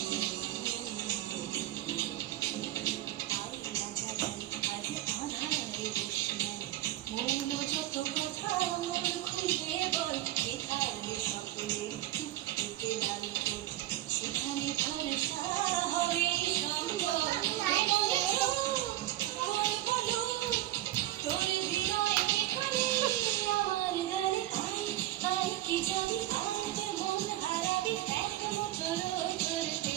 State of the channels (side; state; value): left; quieter; 14.7 dB